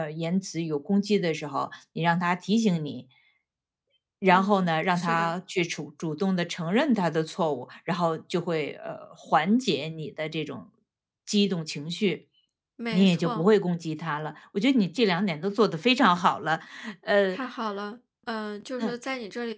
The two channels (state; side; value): identical; both; correlation 1.00